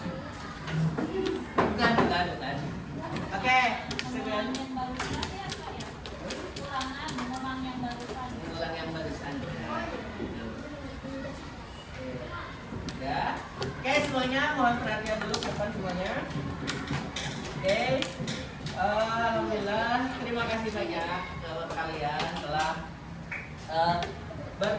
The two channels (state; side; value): identical; both; correlation 1.00